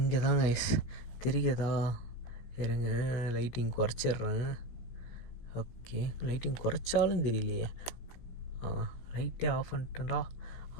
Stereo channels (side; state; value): right; late; 17 ms